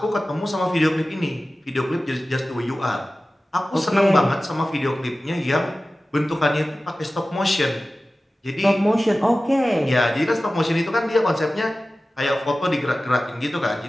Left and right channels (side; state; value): both; normal; correlation 0.96